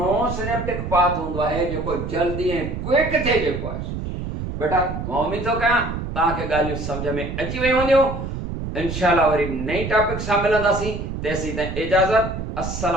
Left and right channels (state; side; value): noise; right; rumble, 6 dB below the sound